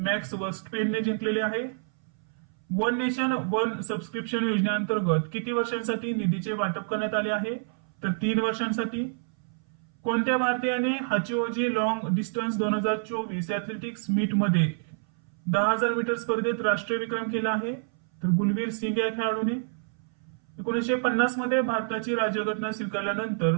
वर्स्टपेनने जिंकलेले आहे. वन नेशन वन सबस्क्रिप्शन योजनेअंतर्गत किती वर्षांसाठी निधीचे वाटप करण्यात आले आहे? तर 3 वर्षांसाठी. कोणत्या भारतीयाने हाचिओजी लॉंग डिस्टन्स 2024 ऍथलेटिक्स मीट मध्ये 10,000 मीटर स्पर्धेत राष्ट्रीय विक्रम केला आहे? तर गुलवीर सिंग या खेळाडूने. 1950 मध्ये भारताची राज्यघटना स्वीकारल्यानंतर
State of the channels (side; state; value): left; silent; 59 dB below the other